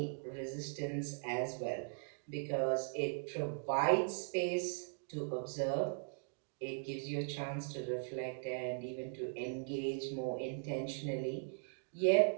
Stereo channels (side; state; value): left; silent; digital silence